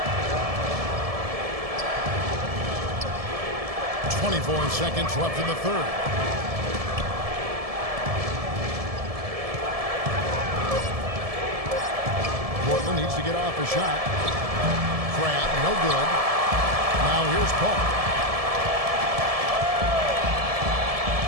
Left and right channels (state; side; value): late; left; 1.7 ms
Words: 24 seconds left in the third. Portland needs to get off a shot. Crabbe, no good. Now here's Paul.